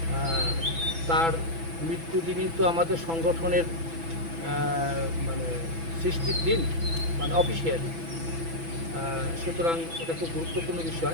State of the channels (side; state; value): left; late; 6.0 ms